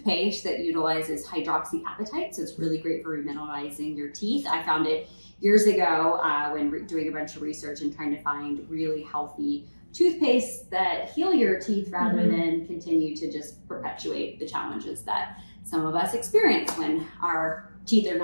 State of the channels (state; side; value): inverted; both; correlation -1.00